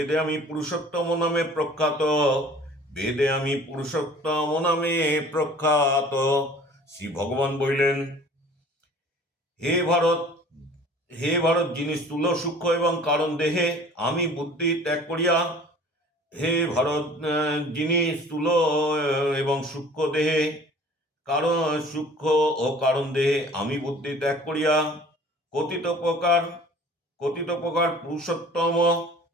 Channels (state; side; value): normal; both; correlation 0.48